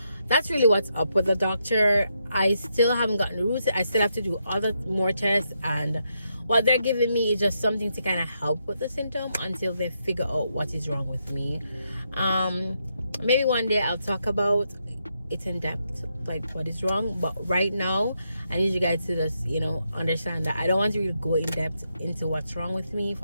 that's really what's up with the doctor. I still haven't gotten roots. I still have to do more tests, and what they're giving me is just something to kind of help with the symptom until they figure out what is wrong with me. Maybe one day I'll talk about it in depth, like what is wrong. But right now, I need you guys to just, you know, understand that I don't want to really go in depth into what's wrong with me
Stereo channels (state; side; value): inverted; both; correlation -0.81